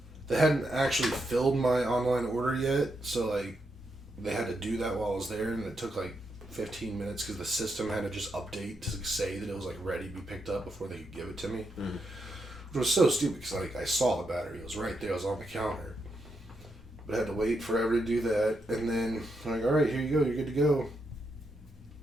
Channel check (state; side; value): normal; both; correlation 0.82